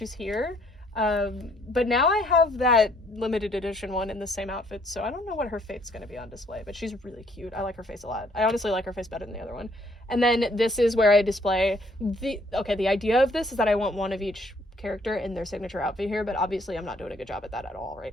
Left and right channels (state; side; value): normal; both; correlation 0.65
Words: here. But now I have that limited edition one in the same outfit, so I don't know what her fate's going to be on display, but she's really cute. I like her face a lot. I honestly like her face better than the other one. And then this is where I display the idea of this is that I want one of each character in their signature outfit here, but obviously I'm not doing a good job at that at all